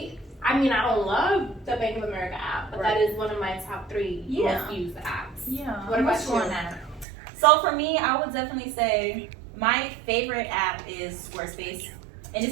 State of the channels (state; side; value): drops out; left; at 7.1 s